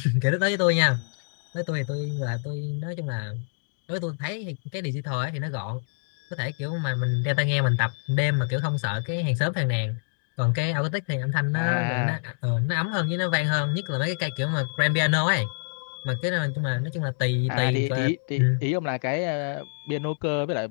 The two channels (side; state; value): right; silent; digital silence